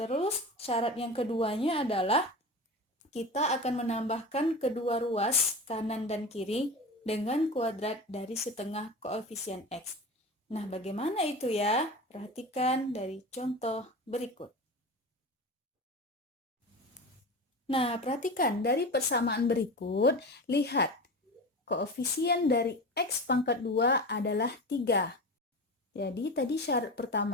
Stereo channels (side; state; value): both; normal; correlation 0.29